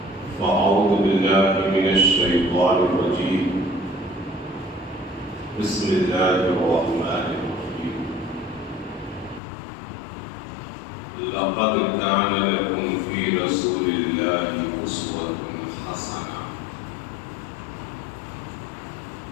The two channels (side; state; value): right; drops out; at 9.4 s